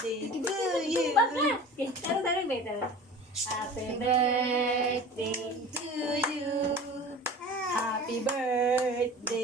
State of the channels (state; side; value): normal; both; correlation 0.39